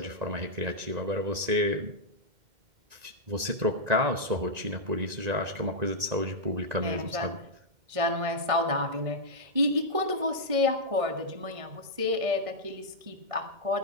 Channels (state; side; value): late; left; 1.9 ms